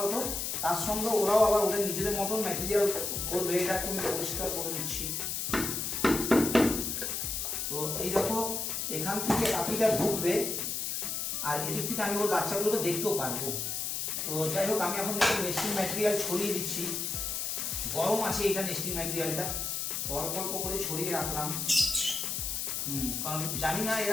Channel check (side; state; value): left; noise; hiss, 2 dB below the sound